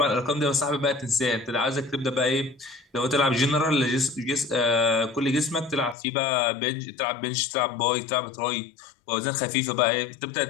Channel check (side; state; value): right; drops out; at 6.0 s